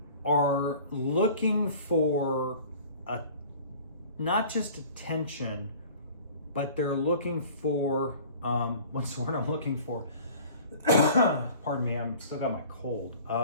are looking for not just attention, but they're looking for, what's the word I'm looking for? Pardon me, I'm still got my cold.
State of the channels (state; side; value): inverted; both; correlation -0.46